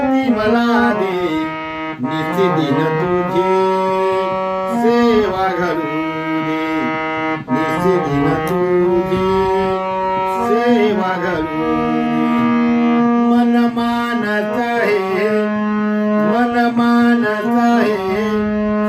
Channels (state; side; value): identical; both; correlation 1.00